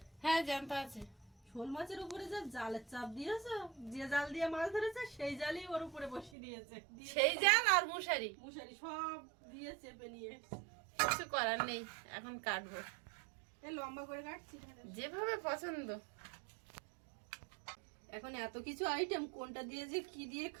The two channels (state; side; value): drops out; left; at 6.3 s